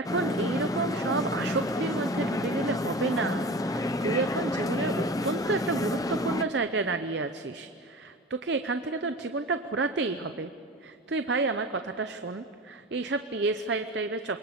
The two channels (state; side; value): normal; both; correlation 0.33